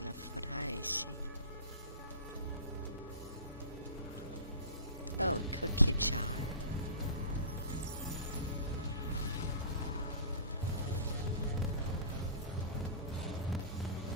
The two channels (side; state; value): both; inverted; correlation -0.38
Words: of what I see. Oh, cookie jar.